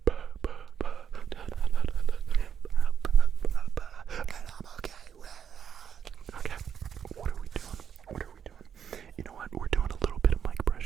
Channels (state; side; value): quieter; left; 8.0 dB